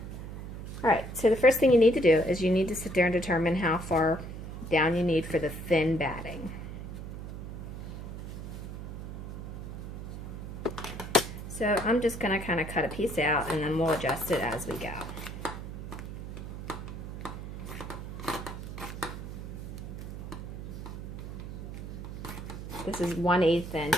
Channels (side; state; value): right; noise; hum, 8 dB below the sound